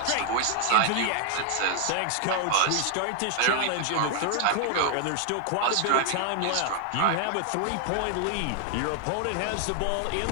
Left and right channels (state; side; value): different; both; correlation 0.00